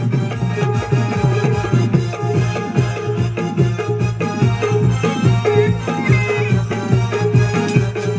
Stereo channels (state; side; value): identical; both; correlation 1.00